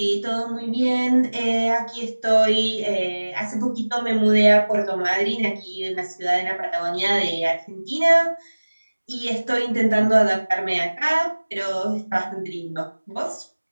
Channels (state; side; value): inverted; both; correlation -1.00